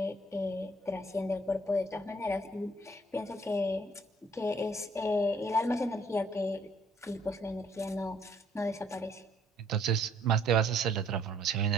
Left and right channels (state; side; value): normal; both; correlation 0.63